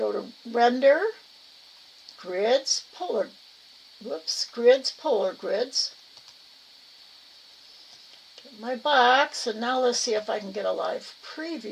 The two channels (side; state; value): both; identical; correlation 1.00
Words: to Render, Grids, Grids, Polar Grids. Get my box, and now let's see if I can get a live